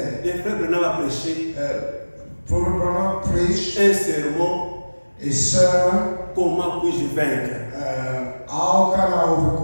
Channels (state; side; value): inverted; both; correlation -1.00